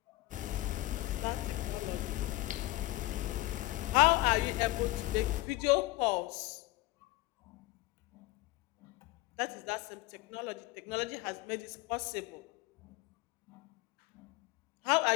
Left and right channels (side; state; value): right; quieter; 19.3 dB